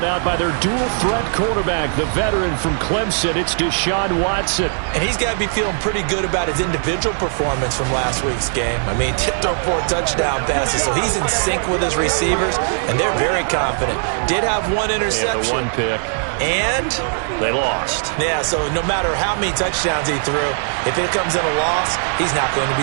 out by their dual-threat quarterback, the veteran from Clemson. It's Deshaun Watson. And he's got to be feeling pretty good about his individual performance from last week's game. I mean, throw 4 touchdown passes, so he's in sync with his receivers, and they're very confident. Did have 1 interception. Yeah, the 1 pick. And they lost. Yeah, so no matter how many touchdowns he threw, if it comes in a loss, he's not going to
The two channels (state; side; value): silent; left; digital silence